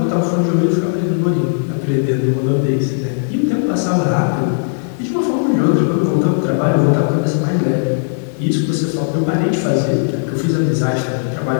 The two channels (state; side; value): silent; right; digital silence